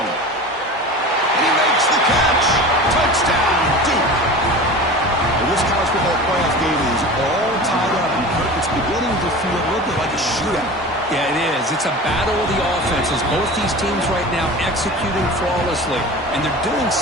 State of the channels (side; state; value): both; normal; correlation 0.34